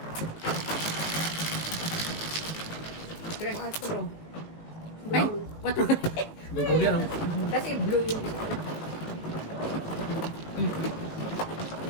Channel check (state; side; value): late; right; 19 ms